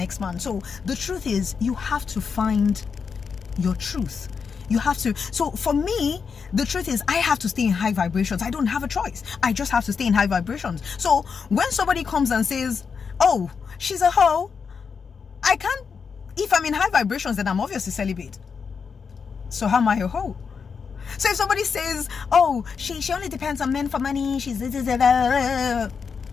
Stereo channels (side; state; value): right; quieter; 5.9 dB